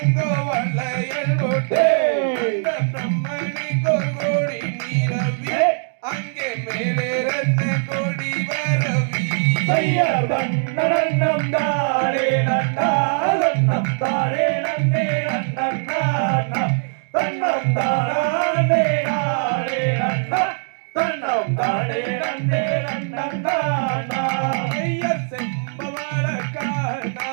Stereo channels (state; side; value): silent; left; 61 dB below the other